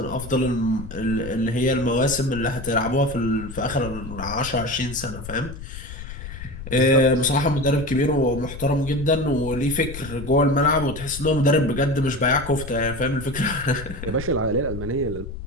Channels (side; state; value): left; noise; rumble, 11 dB below the sound